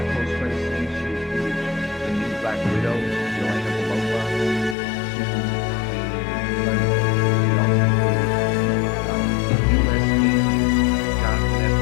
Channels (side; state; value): right; drops out; at 4.8 s